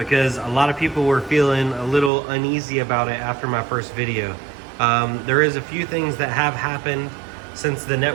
a lot of people were feeling a little uneasy about it after my first video. There is a few things that have happened since the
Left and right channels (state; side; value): drops out; left; at 2.1 s